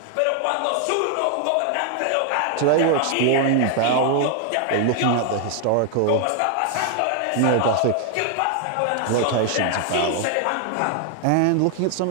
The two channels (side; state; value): both; different; correlation 0.00